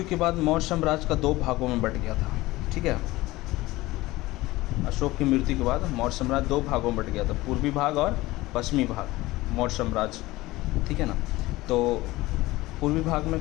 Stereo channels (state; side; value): quieter; right; 19.0 dB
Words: के बाद मौर्य साम्राज्य का 2 भागों में बंट गया था। ठीक है, अशोक की मृत्यु के बाद मौर्य साम्राज्य 2 भागों में बट गया था, पूर्वी भाग और पश्चिमी भाग मौर्य साम्राज्य, ठीक है ना। तो पूर्वी भाग में